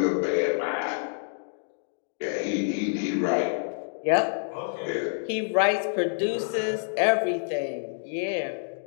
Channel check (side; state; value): right; silent; digital silence